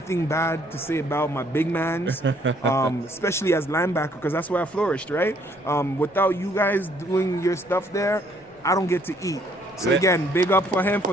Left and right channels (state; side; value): noise; left; rumble, 30 dB below the sound